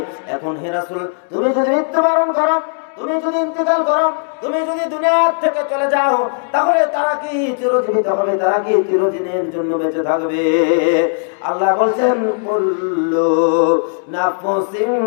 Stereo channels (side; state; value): right; silent; digital silence